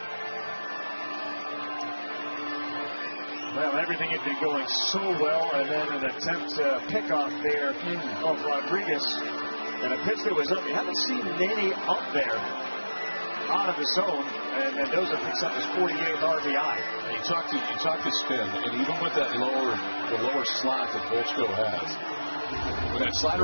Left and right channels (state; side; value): inverted; both; correlation -1.00